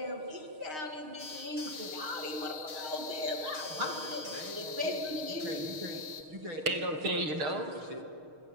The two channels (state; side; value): late; left; 6.5 ms